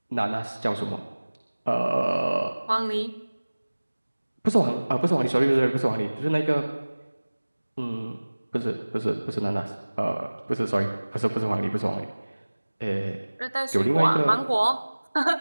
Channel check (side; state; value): both; inverted; correlation -1.00